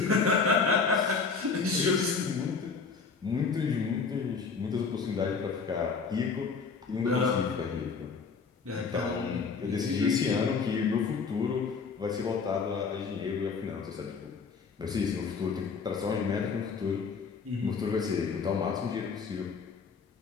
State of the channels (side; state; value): right; quieter; 5.2 dB